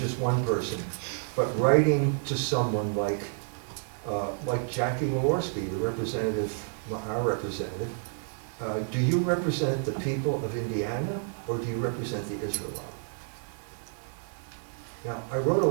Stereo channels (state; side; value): silent; left; digital silence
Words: one person, but writing to someone like Jackie Walorski, the representative, our representative. Do you represent the people of Indiana, or do you represent the Israel lobby? Now, I wrote a